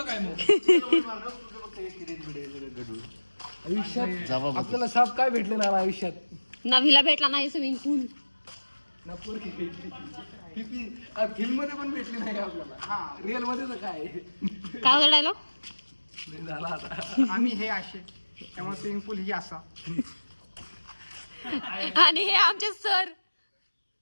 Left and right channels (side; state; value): both; inverted; correlation -1.00